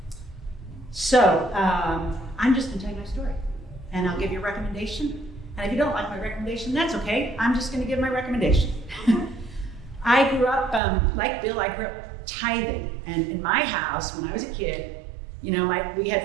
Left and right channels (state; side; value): drops out; left; at 10.8 s